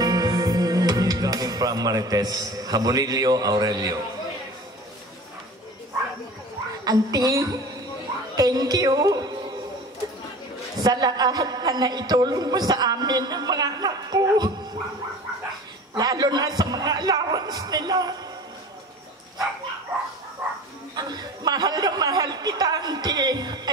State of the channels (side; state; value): both; normal; correlation 0.39